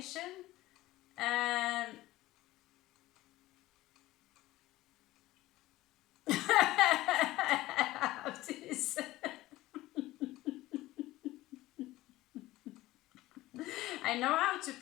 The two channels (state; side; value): quieter; right; 17.2 dB